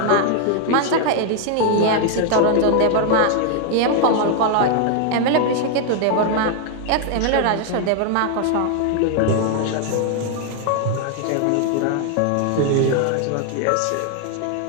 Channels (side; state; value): both; different; correlation 0.00